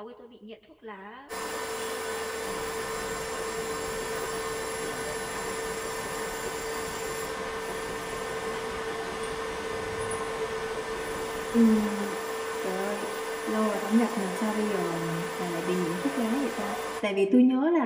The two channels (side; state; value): both; identical; correlation 1.00